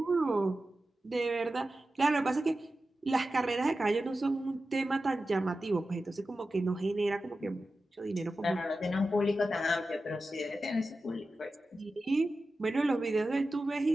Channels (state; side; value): normal; both; correlation 0.93